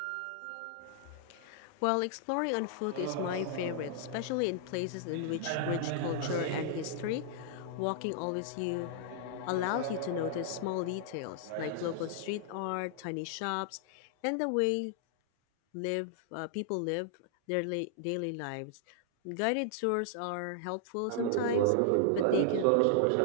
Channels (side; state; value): both; different; correlation -0.01